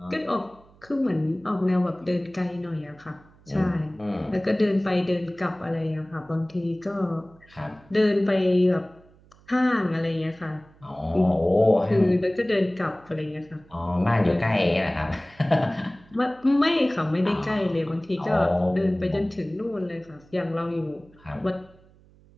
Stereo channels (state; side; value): noise; right; hum, 28 dB below the sound